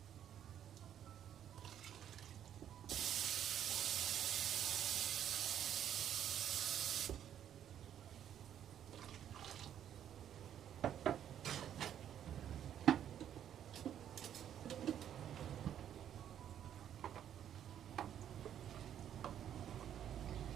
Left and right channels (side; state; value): left; quieter; 10.0 dB